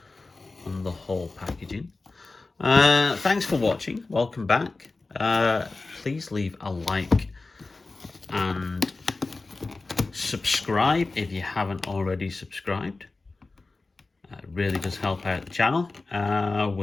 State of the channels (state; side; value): quieter; right; 3.6 dB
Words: on the whole packaging. Thanks for watching. Welcome back. Please leave a like and subscribe if you haven't already subscribed. It really does help out the channel.